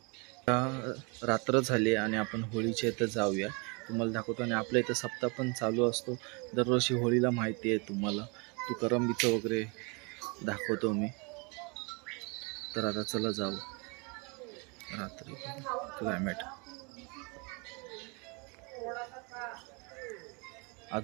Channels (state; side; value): quieter; left; 31.6 dB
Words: रात्र झाली आणि आपण होळीच्या इथं जाऊया, तुम्हाला दाखवतो. आणि आपल्या इथं सप्ताह पण चालू असतो दरवर्षी होळीला, माहिती आहे तुम्हाला. तुकारामबीचं वगैरे दाखवतो मी. तर आता चला जाऊ. रात्री क्लायमेट